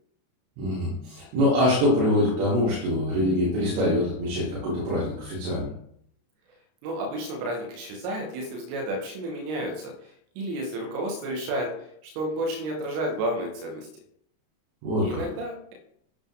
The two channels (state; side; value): late; left; 32 ms